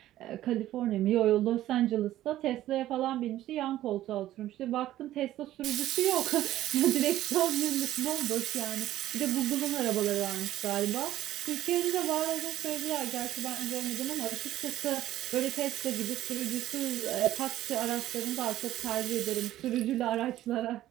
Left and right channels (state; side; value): quieter; left; 13.9 dB